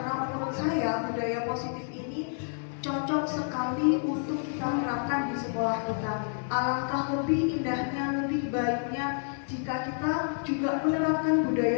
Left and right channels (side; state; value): right; silent; 56 dB below the other